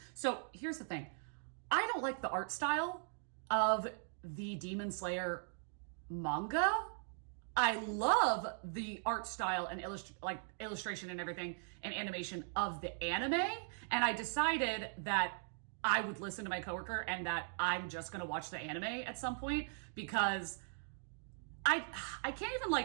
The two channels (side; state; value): left; silent; digital silence